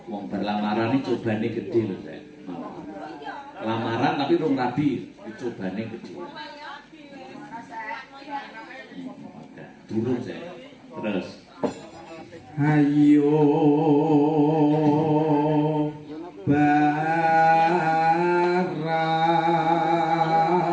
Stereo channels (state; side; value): identical; both; correlation 1.00